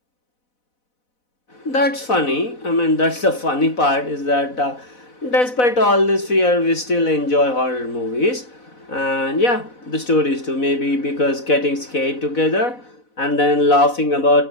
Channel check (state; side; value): late; right; 4.0 ms